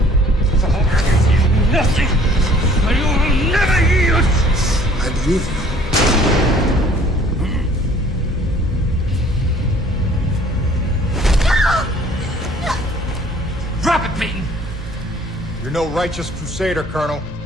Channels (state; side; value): normal; both; correlation 0.55